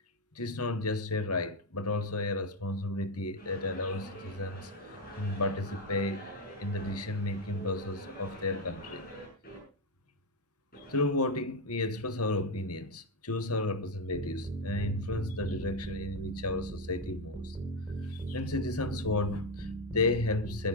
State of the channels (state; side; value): normal; both; correlation 0.07